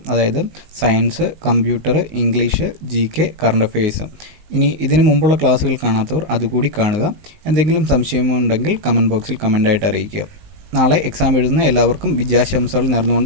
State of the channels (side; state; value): left; late; 19 ms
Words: അതായത് science, computer, English, GK, current affairs. ഇനി ഇതിനു മുമ്പുള്ള ക്ലാസ്സുകൾ കാണാത്തവർ അതുകൂടി കാണുക. എന്തെങ്കിലും സംശയമുണ്ടെങ്കിൽ കമൻറ്റ് ബോക്സിൽ കമൻ്റായിട്ട് അറിയിക്കുക. നാളെ എക്സാം എഴുതുന്ന എല്ലാവർക്കും വിജയാശംസകൾ